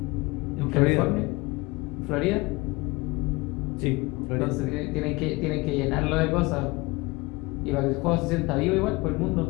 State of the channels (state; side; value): quieter; right; 23.8 dB